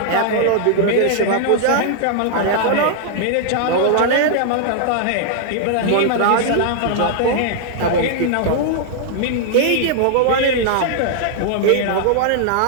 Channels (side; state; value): both; different; correlation -0.01